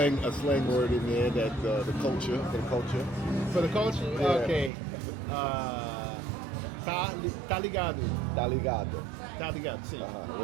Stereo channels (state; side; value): drops out; left; at 4.7 s